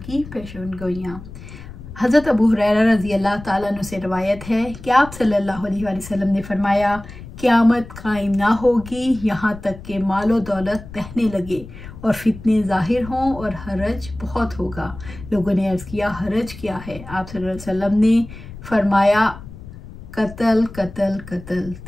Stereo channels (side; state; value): left; noise; rumble, 15 dB below the sound